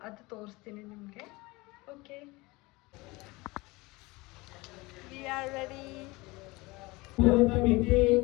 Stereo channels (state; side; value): quieter; right; 23.0 dB